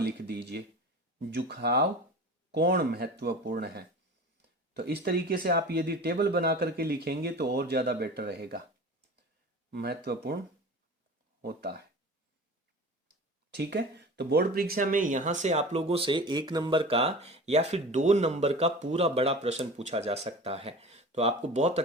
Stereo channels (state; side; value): normal; both; correlation 0.36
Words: लिख दीजिए, झुकाव कोण महत्वपूर्ण है। तो इस तरीके से आप यदि टेबल बना करके लिखेंगे तो और ज्यादा बेटर रहेगा, महत्वपूर्ण होता है, ठीक है। तो बोर्ड परीक्षा में यहां से आप लोगों से 1 नंबर का या फिर 2 नंबर का पूरा बड़ा प्रश्न पूछा जा सकता है, तो आपको बहुत